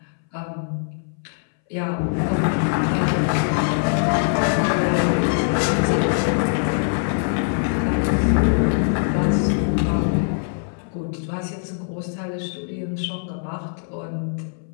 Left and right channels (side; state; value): right; silent; 61 dB below the other